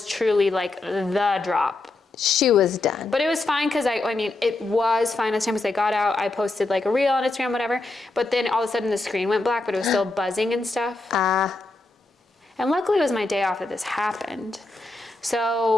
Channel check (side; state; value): right; quieter; 3.1 dB